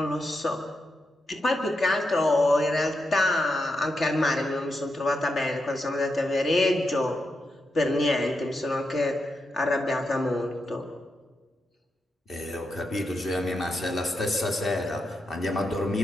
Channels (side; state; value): both; normal; correlation 0.85